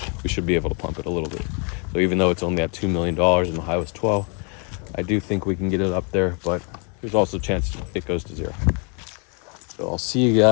We should be able to pump it a little bit. So even though it's only at $2 million and the high was 12, I do think we can get it up there, but there's also a chance it goes to 0. So I'll see you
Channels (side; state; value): right; quieter; 36.8 dB